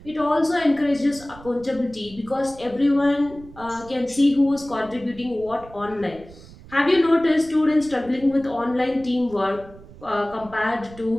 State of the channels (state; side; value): noise; right; rumble, 20 dB below the sound